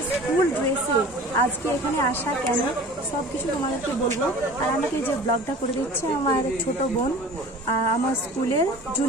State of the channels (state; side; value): normal; both; correlation 0.42